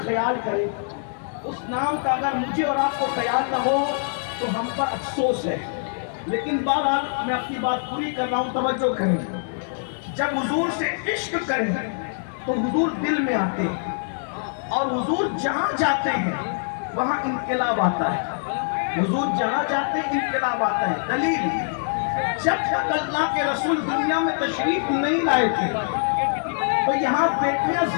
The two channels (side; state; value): right; silent; digital silence